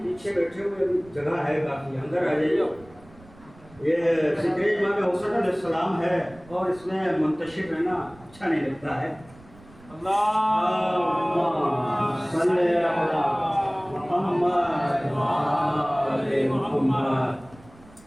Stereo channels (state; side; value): noise; right; rumble, 24 dB below the sound